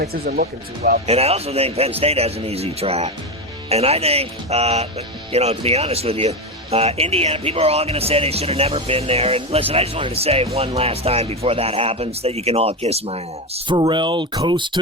isn't looking too well. And I also think Penn State has an easy track. And I think, to be honest with you, Indiana, people are all going to say they should have never been there. And listen, I just wanted to say one last time before that happens that you can all kiss my ass. Pharrell Coast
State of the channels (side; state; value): both; normal; correlation 0.14